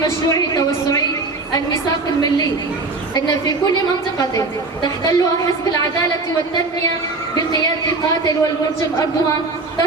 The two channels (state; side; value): quieter; left; 3.5 dB